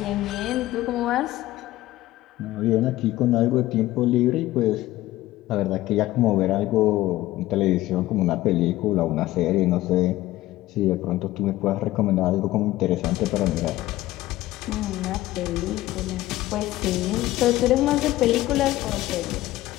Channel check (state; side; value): quieter; right; 16.3 dB